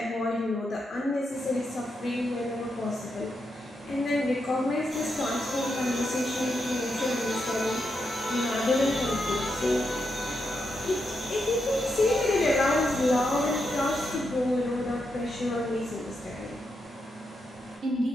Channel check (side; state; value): both; normal; correlation 0.84